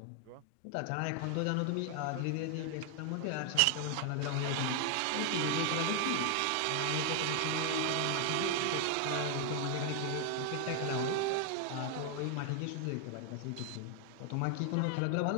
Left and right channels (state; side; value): different; both; correlation 0.00